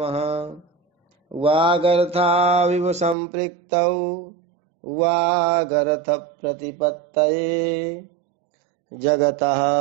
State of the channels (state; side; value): drops out; left; at 3.2 s